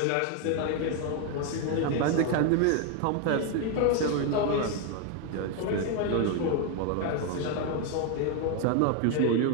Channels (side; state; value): both; different; correlation 0.01